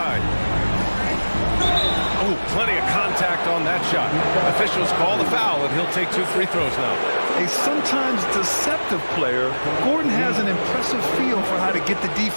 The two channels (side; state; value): both; inverted; correlation -1.00